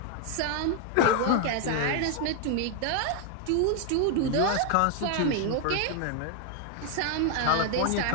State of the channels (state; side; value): different; both; correlation 0.00